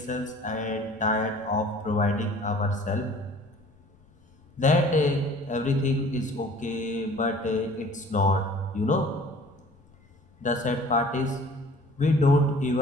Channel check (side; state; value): left; noise; rumble, 30 dB below the sound